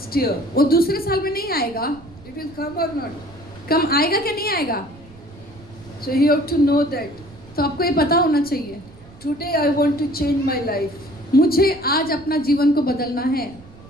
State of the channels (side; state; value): right; noise; rumble, 22 dB below the sound